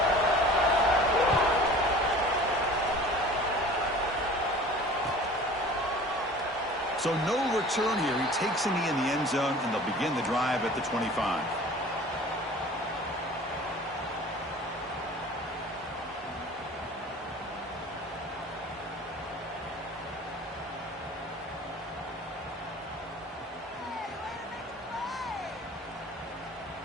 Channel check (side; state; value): both; normal; correlation 0.44